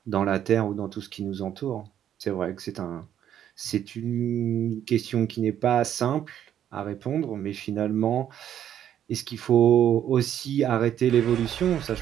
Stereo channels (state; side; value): quieter; left; 10.3 dB